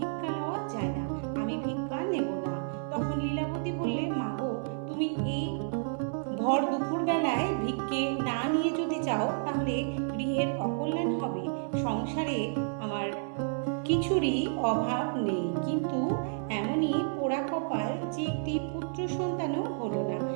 লওয়া যায় না। আমি ভিক্ষা নেব না। তখন লীলাবতী বললেন, মা গো, তুমি এই ভর দুপুর বেলায় ভিক্ষে না নিয়ে যদি যাও তাহলে গৃহের অকল্যাণ হবে। সংসারে আমার কিছুরই অভাব নেই, কিন্তু এমনই পোড়া কপাল যে একটি পুত্র সন্তানও হলো না।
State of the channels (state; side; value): silent; left; 57 dB below the other